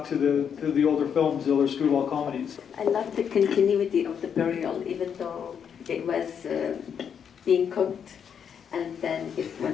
to the older films, the older screwball comedies. I love the continuity of the burial, even though it was being cooked, and then it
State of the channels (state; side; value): quieter; right; 7.7 dB